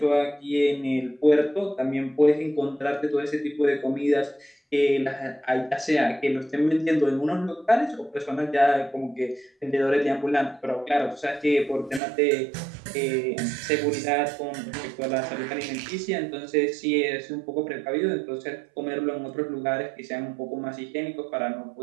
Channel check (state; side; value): drops out; left; at 12.0 s